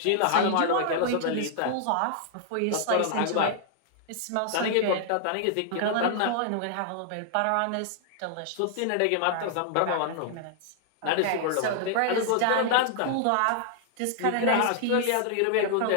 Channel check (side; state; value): both; different; correlation 0.00